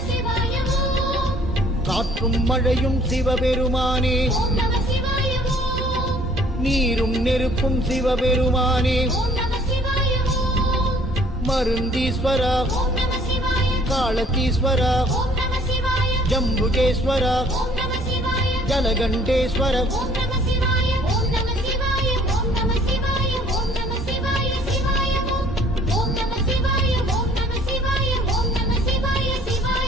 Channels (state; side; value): normal; both; correlation 0.57